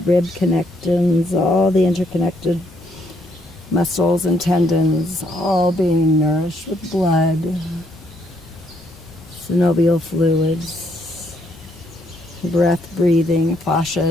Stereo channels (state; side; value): normal; both; correlation 0.72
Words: connections, all the interconnected muscles and tendons, all being nourished with blood, synovial fluids, breath breathing,